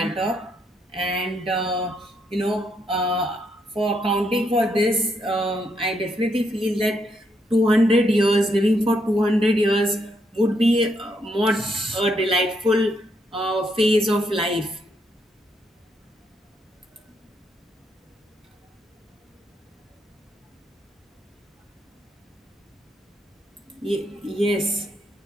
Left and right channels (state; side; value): normal; both; correlation 0.76